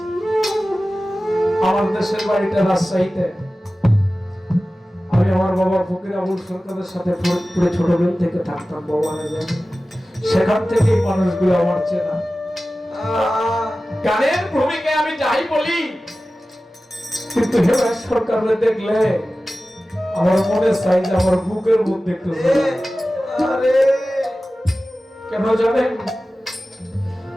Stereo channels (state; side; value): normal; both; correlation 0.96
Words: আমার দেশের বাড়িটা রাজশাহীতে। আমি আমার বাবা ফকির আবুল সরকারের সাথে পুরো ছোটবেলা থেকে থাকতাম, বাবা জানে। সেখান থেকে মানুষগুলো আমার চেনা। গানের ভূমিকায় আমি যাই বলি, কিন্তু হেমন্ত সরকারকে দেখলে আমার মনে চাই যে আমার বুকের মধ্যে একটু কেন জানেন?